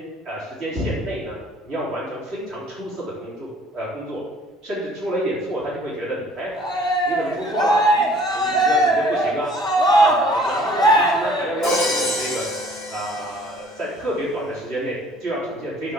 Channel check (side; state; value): both; normal; correlation 0.54